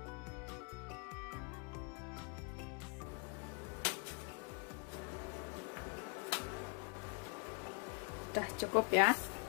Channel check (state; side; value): quieter; right; 34.6 dB